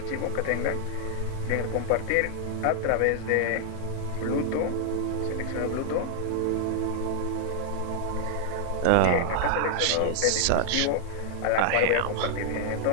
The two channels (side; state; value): both; different; correlation -0.01